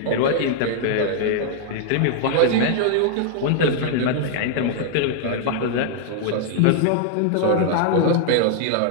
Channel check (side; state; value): both; different; correlation -0.01